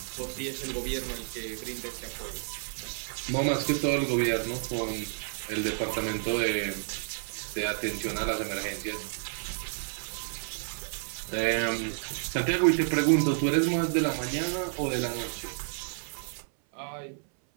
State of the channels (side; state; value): left; silent; 58 dB below the other